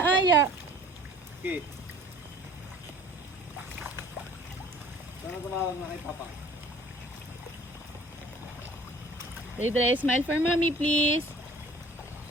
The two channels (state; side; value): normal; both; correlation 0.50